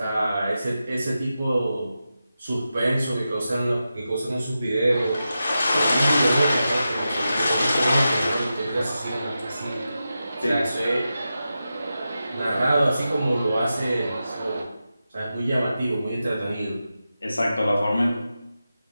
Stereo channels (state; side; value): inverted; both; correlation -0.91